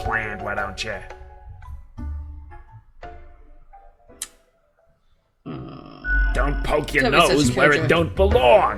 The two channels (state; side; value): identical; both; correlation 1.00